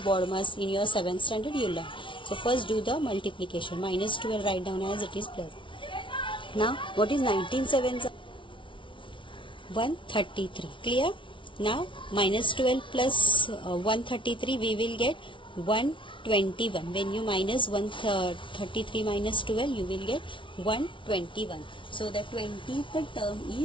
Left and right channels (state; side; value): late; right; 0.25 ms